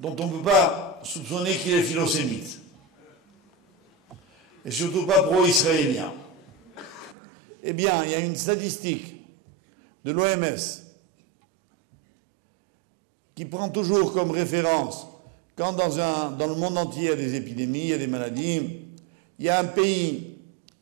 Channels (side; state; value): left; drops out; at 7.2 s